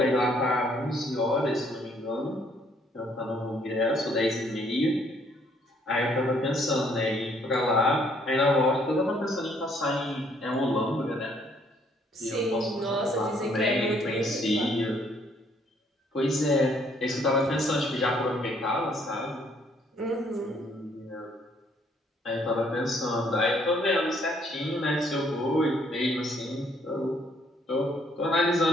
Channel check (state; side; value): normal; both; correlation 0.66